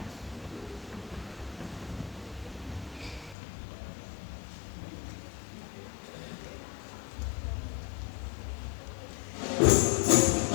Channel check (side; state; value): right; drops out; at 3.4 s